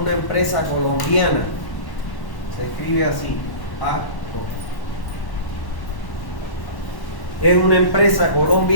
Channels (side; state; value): right; late; 1.1 ms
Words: empresa colombiana. Se escribe así, Parco. Es una empresa